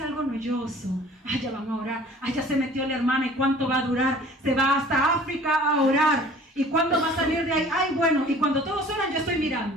algo noyoso. Ay, ya van a orar. Ay, ya se metió la hermana. ¿Y cuánto va a durar? Se va hasta África a orar. ¿Y cuándo va a salir de ahí? Ay, bueno. Y cuando todos oran, yo estoy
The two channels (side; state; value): both; normal; correlation 0.49